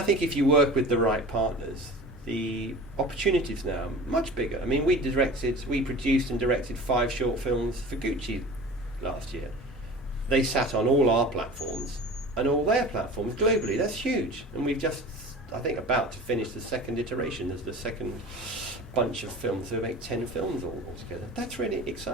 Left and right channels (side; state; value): both; normal; correlation 0.38